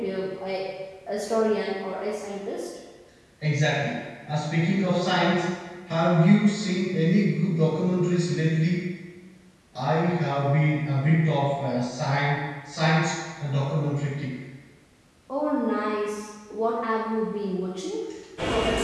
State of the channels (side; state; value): both; identical; correlation 1.00